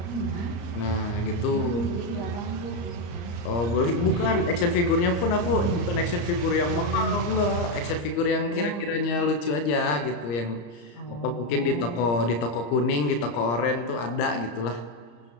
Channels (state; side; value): late; right; 34 ms